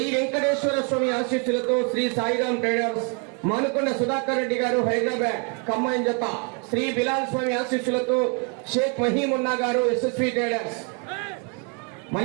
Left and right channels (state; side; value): quieter; left; 34.9 dB